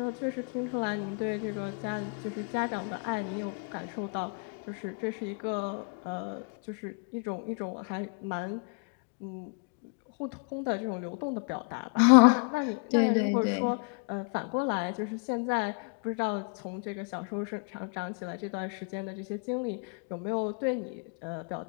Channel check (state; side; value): quieter; right; 38.0 dB